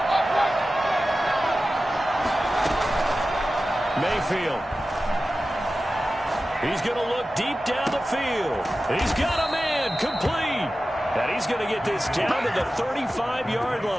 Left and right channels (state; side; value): normal; both; correlation 0.94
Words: Mayfield. He's going to look deep down the field. He's got a man complete. And he's going to get this down to the 35-yard